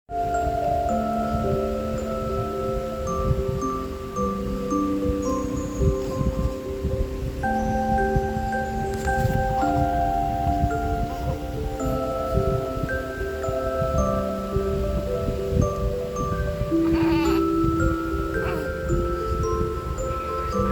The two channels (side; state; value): both; identical; correlation 1.00